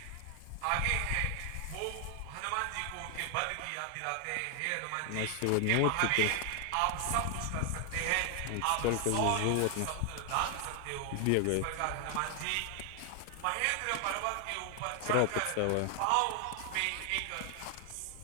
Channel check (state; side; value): different; both; correlation 0.00